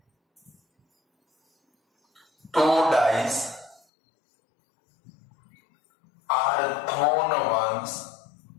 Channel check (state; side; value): drops out; right; at 3.8 s